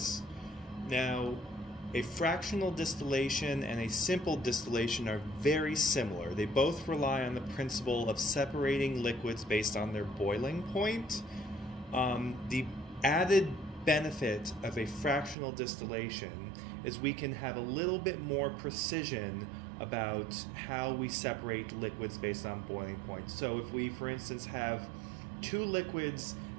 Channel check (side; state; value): left; drops out; at 15.4 s